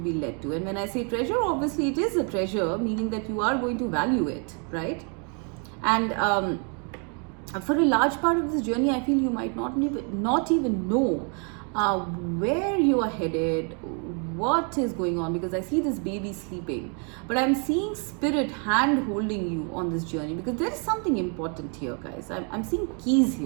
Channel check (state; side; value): quieter; left; 38.9 dB